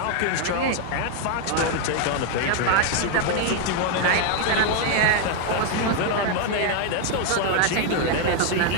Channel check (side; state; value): both; different; correlation 0.01